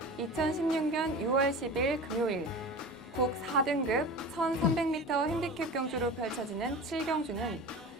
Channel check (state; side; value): normal; both; correlation 0.33